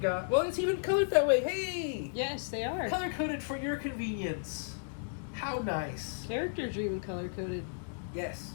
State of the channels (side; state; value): right; silent; digital silence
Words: Well, it's even colored that way. Hey! Yes, they are. Color-coded for your convenience. How nice. Characters are even color-coded. Yes.